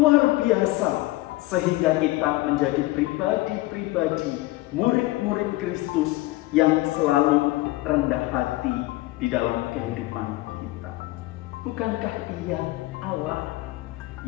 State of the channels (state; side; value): quieter; right; 19.4 dB